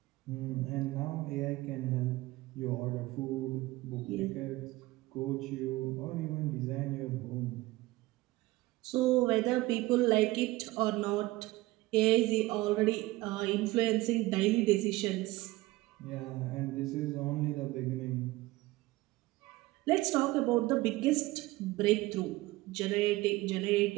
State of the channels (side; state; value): left; quieter; 19.3 dB